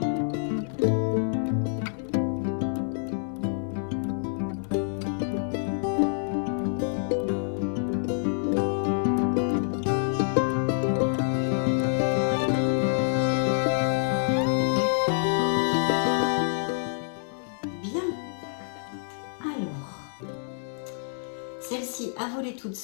Celle-ci a volé toute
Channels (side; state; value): right; silent; digital silence